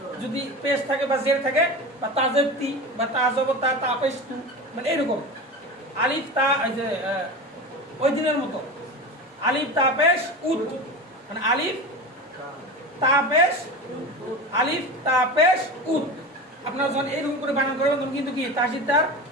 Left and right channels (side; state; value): both; normal; correlation 0.27